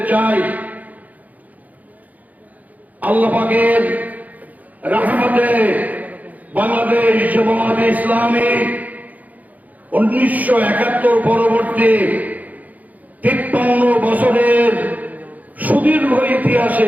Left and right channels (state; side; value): late; left; 0.078 ms